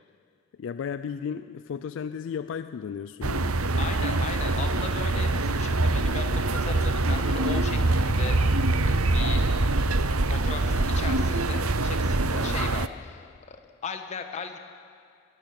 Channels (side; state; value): both; normal; correlation 0.61